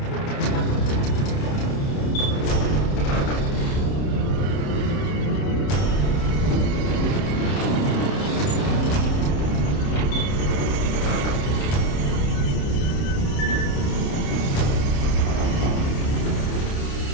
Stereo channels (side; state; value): right; late; 29 ms